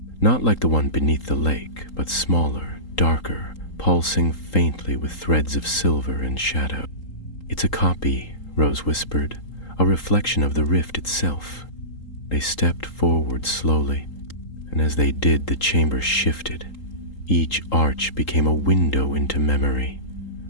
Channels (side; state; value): right; late; 3.8 ms